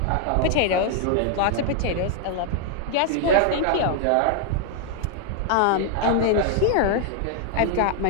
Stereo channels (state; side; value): different; both; correlation 0.00